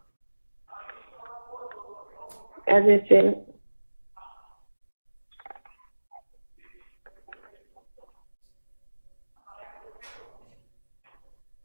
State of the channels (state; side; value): inverted; both; correlation -1.00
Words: I just said it.